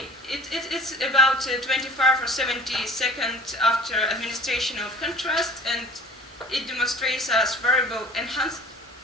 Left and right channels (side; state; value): both; normal; correlation 0.46